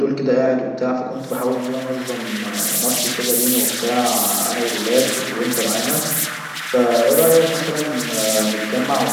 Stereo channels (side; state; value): both; identical; correlation 1.00